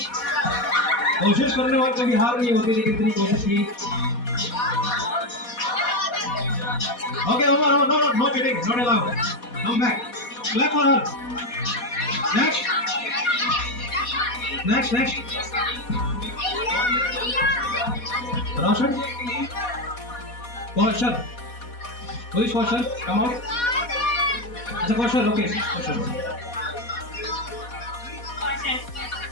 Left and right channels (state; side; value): late; right; 4.2 ms